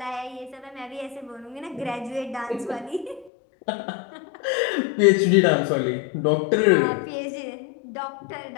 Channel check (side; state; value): right; drops out; at 3.3 s